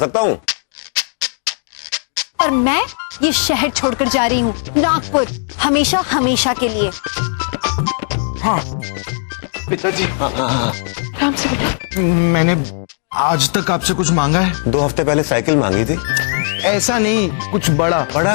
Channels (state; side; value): silent; right; digital silence